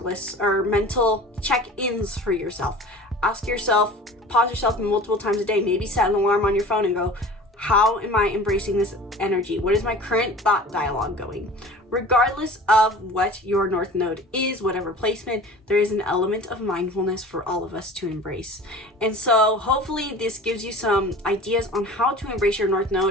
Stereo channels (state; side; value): normal; both; correlation 0.40